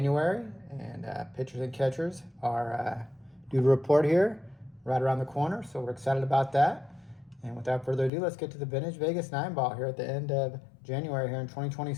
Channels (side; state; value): right; drops out; at 8.1 s